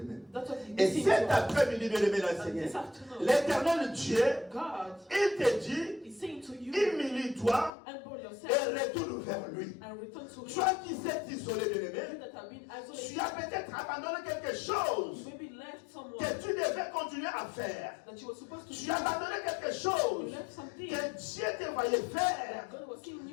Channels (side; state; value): right; drops out; at 7.7 s